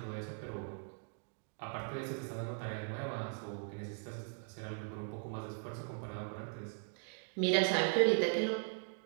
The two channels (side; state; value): left; silent; 52 dB below the other